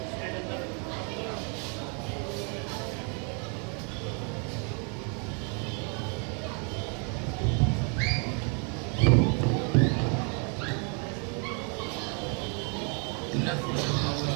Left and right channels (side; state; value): left; quieter; 37.8 dB